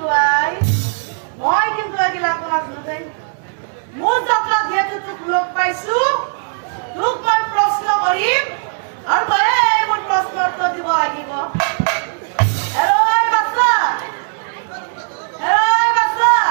আই মই কিন্তু এগিলা নাজানো দেই। মোৰ যাত্ৰাত যিহেতু তোক লগ পাইছো তোক মই প্ৰশ্ন কৰিম আৰু তই মোৰ প্ৰশ্নৰ উত্তৰ দিব লাগিব।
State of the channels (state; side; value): silent; left; 68 dB below the other